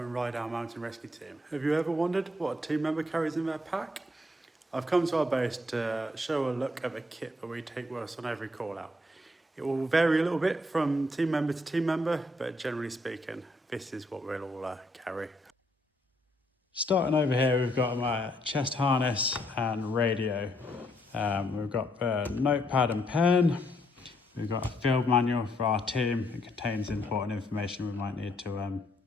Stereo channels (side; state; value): both; normal; correlation 0.72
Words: and Ryedale Mountain Rescue Team. Have you ever wondered what a team member carries in their pack? I've come to our base to show a look at the kit that we take with us on every call out. It will vary a little bit from team member to team member, but generally speaking, this is what we'll all carry. Starting over here, we've got my chest harness and radio. We've got a notepad and pen. We've got a field manual for our team. It contains important information we might need to